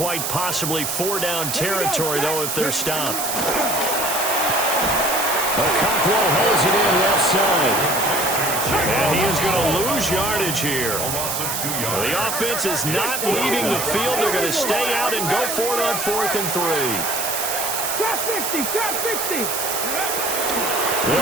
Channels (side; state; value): right; noise; hiss, 2 dB below the sound